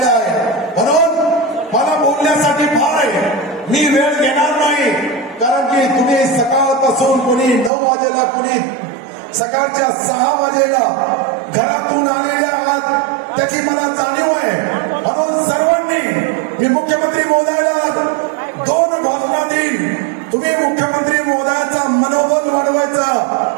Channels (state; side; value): drops out; left; at 7.7 s